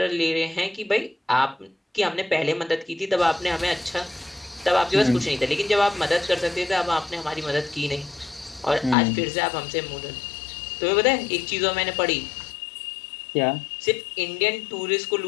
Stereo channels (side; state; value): right; drops out; at 9.0 s